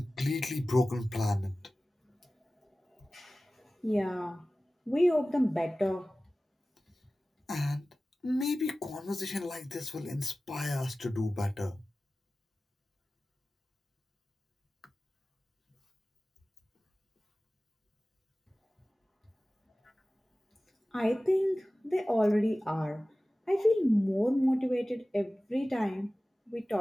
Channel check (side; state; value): both; normal; correlation 0.97